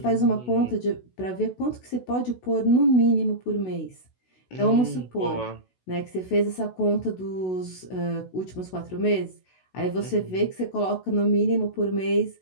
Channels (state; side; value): late; right; 16 ms